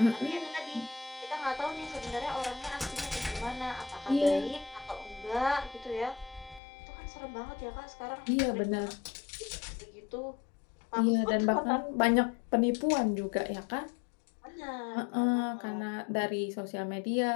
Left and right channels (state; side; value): drops out; right; at 6.6 s